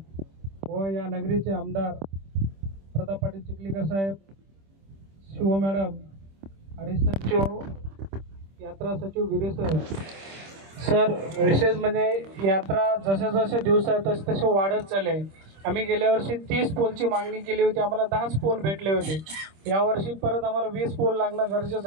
व या नगरीचे आमदार प्रताप पाटील चिखलीकर साहेब, शिव मॅडम, हरीश सचिव, यात्रा सचिव गिरीश सर। विशेष म्हणजे यात्रा जसे जसे दिवस आहेत तसे तसे वाढत चालले। आम्ही गेल्या वर्षी 30 पोलची मागणी केली होती, आम्हाला 10च पोल भेटले होते। यावर्षी परत आम्हाला 20 पोल लागणं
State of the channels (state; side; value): late; left; 26 ms